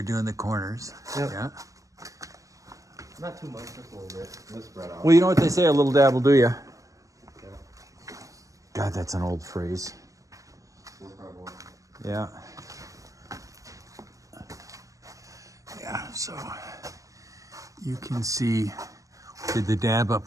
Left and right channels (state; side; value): late; left; 0.16 ms